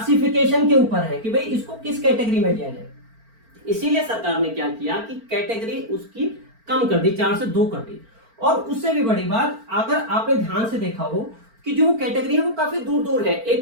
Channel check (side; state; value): left; late; 4.4 ms